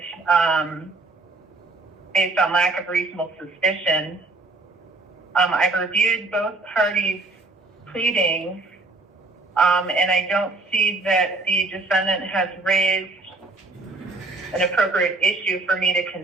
based on lack of reasonable suspicion. I've reviewed both parties' pleadings, and I don't see that the defendant has raised an appropriate issue for me to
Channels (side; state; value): left; quieter; 3.4 dB